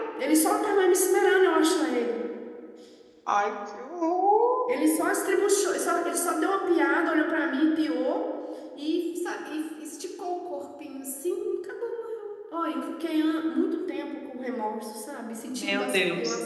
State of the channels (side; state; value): both; identical; correlation 1.00